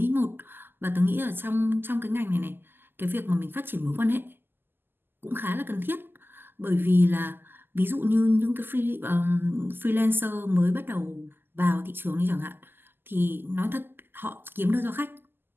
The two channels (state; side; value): late; left; 0.098 ms